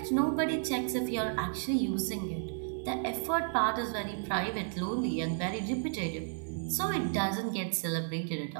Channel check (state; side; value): silent; left; 56 dB below the other